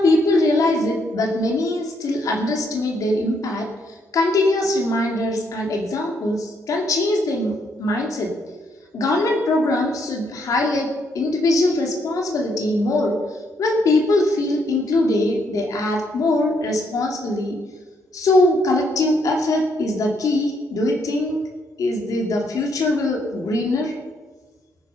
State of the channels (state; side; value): normal; both; correlation 0.73